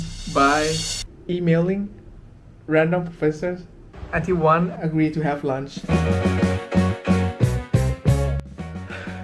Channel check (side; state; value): both; identical; correlation 1.00